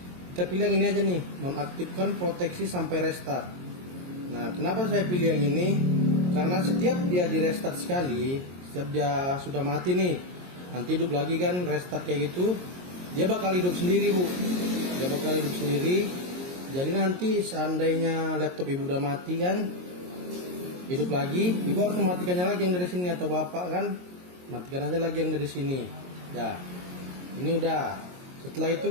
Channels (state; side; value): late; left; 22 ms